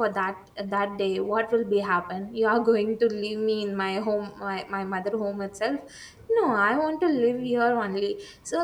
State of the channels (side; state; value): both; identical; correlation 1.00